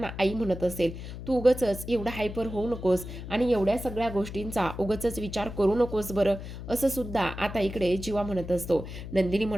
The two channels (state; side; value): noise; left; hum, 10 dB below the sound